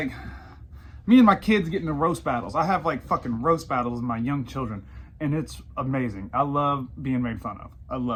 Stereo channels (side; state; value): both; identical; correlation 1.00